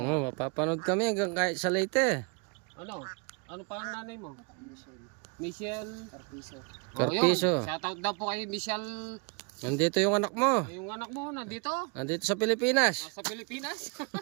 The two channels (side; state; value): left; quieter; 33.3 dB